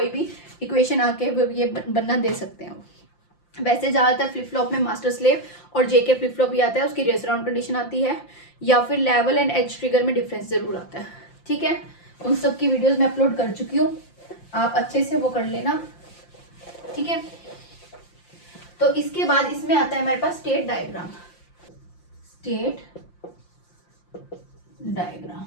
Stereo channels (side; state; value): right; late; 5.7 ms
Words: भी इक्वेशन आके ये बनना दे सकते हैं। वैसे ज़्यादातर फ्लिप फ्लॉप में मास्टर स्लेव और जेके फ्लिप फ्लॉप ही आता है, उसकी रेस राउंड कंडीशन आती है, या फिर लेवल एंड एज ट्रिगर में डिफरेंस जरूर आता है। ठीक है, उन सब की वीडियोस मैं अपलोड कर चुकी हूँ, आप अच्छे से वो कर लेना। ठीक है, तो इसके बाद इसमें आता है हमारे पास स्टेट डायग्राम। स्टेट डायग्राम,